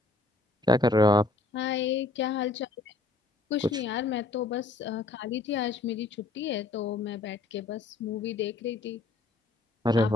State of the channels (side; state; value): right; quieter; 3.4 dB